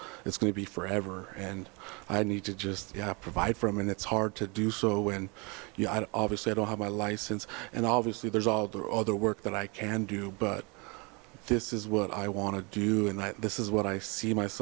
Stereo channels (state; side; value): quieter; left; 29.6 dB